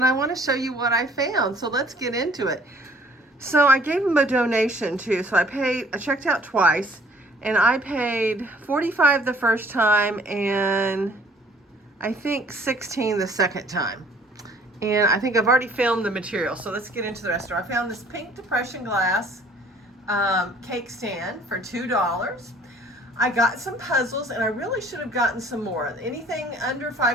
I want to show you what I found, so let's get into it. So I gave them a donation too, so I checked out twice, and I paid $45 the first time and I think $16 the second time. And I think I've already filmed the material, so let's get into the rest of it. I found this pink depression glass cake stand for $2. I got some puzzles, and I really should have gotten some more. Anything under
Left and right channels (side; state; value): both; normal; correlation 0.56